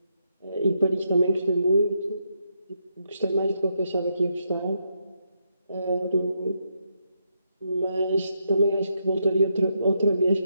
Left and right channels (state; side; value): inverted; both; correlation -0.79